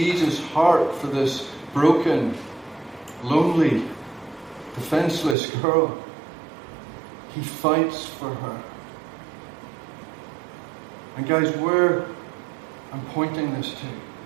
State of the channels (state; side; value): drops out; left; at 5.4 s